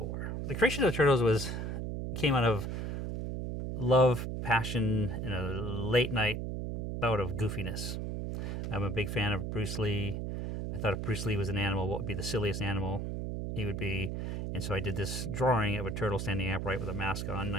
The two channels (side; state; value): right; noise; hum, 3 dB below the sound